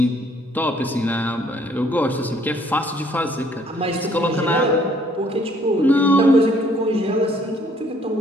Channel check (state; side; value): normal; both; correlation 0.62